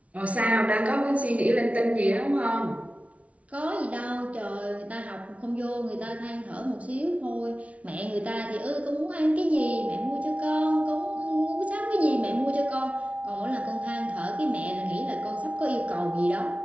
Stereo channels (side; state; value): left; late; 0.065 ms